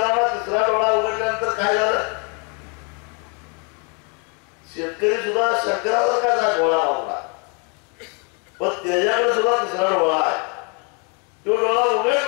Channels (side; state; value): right; quieter; 35.1 dB